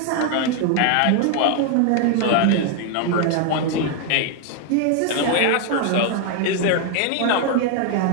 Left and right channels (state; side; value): different; both; correlation 0.01